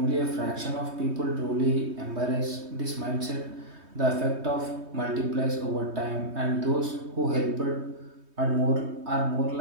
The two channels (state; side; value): late; left; 3.2 ms